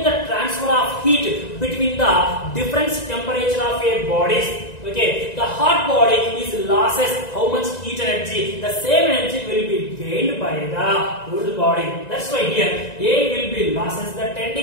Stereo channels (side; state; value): right; late; 1.9 ms